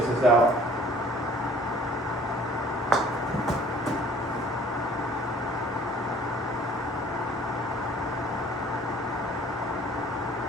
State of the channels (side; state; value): both; normal; correlation 0.53